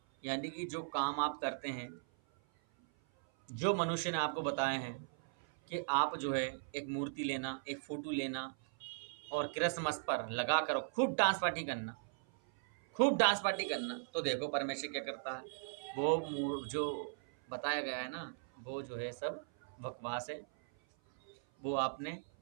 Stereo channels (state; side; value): silent; left; 52 dB below the other